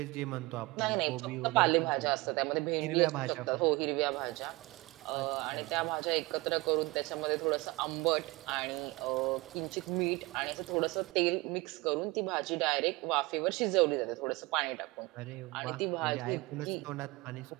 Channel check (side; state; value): left; quieter; 23.0 dB